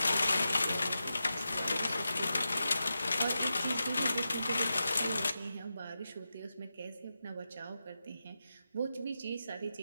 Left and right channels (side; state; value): both; inverted; correlation -0.90